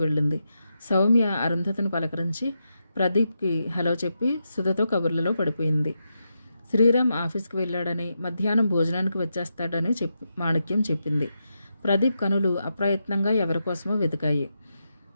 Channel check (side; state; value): both; inverted; correlation -0.86